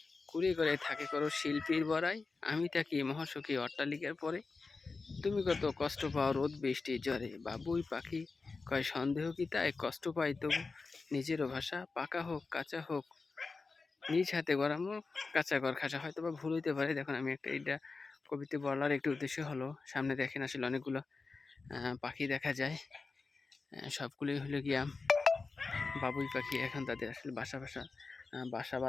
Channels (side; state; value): right; quieter; 4.1 dB